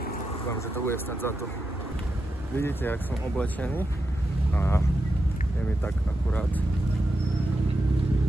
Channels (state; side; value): normal; both; correlation 0.87